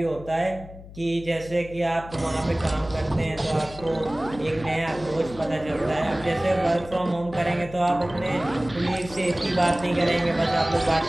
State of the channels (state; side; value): noise; left; hum, 16 dB below the sound